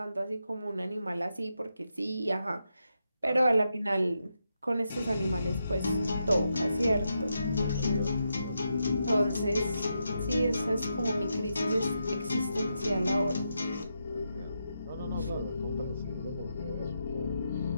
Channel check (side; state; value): both; inverted; correlation -0.84